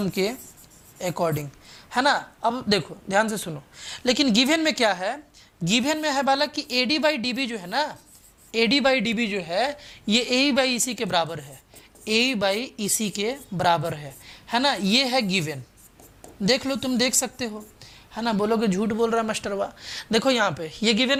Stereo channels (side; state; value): both; identical; correlation 1.00